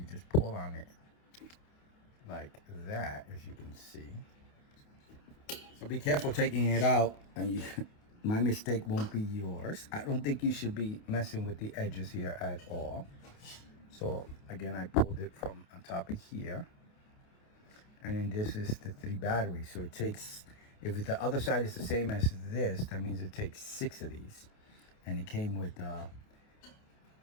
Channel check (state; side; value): late; right; 28 ms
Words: just pull on it like that, as you can see. So be careful taking it out, and my mistake won't be yours. I don't think you should be messing with the edges here at all. So again, I pulled it from on top of here, and then this is the 3 batteries. So it takes, if the other side is the same as this, that means it takes 6 of these. And it came with